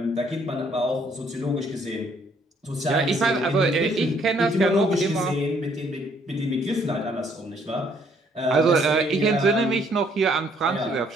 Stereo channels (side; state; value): both; normal; correlation 0.65